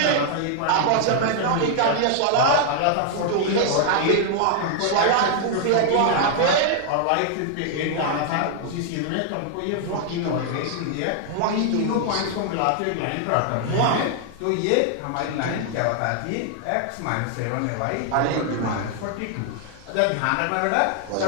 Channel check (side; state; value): both; different; correlation 0.00